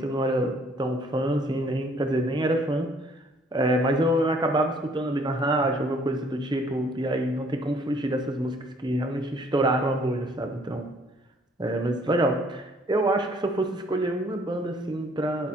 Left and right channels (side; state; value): both; normal; correlation 0.61